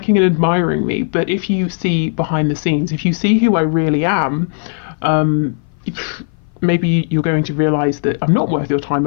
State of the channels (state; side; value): silent; right; 58 dB below the other